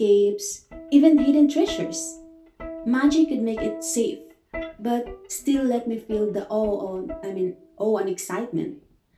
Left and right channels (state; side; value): identical; both; correlation 1.00